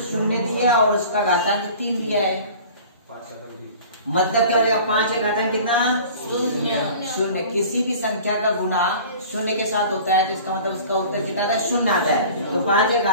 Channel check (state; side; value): inverted; both; correlation -0.43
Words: 0 दिया और उसका घातांक 3 दिया है, मतलब क्या हो जाएगा? 5 का घातांक कितना? 0। किसी भी संख्या का गुना 0 के साथ होता है तो इसका मतलब उसका उत्तर कितना आता है? 0 आता है। तो 5 का